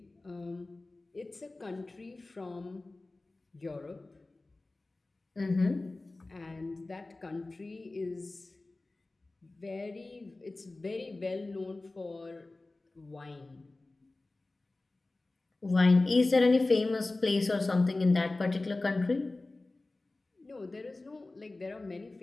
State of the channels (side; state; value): right; quieter; 3.1 dB